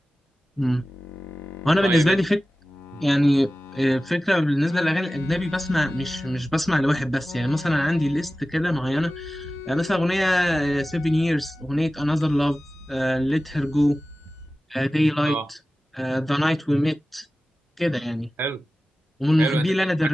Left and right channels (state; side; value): normal; both; correlation 0.95